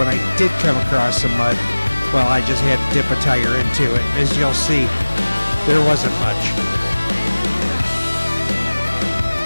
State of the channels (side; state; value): both; inverted; correlation -1.00